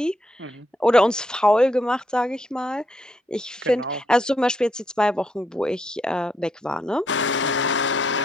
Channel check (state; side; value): normal; both; correlation 0.77